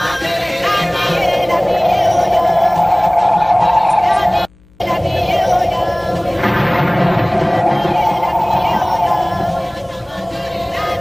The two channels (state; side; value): noise; left; hum, 29 dB below the sound